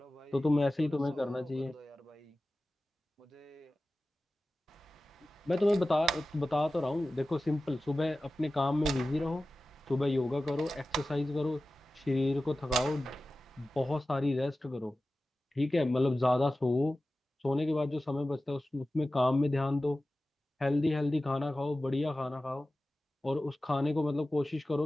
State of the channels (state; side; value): normal; both; correlation 0.95